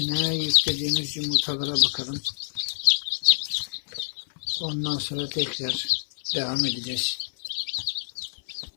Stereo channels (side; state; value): right; silent; 60 dB below the other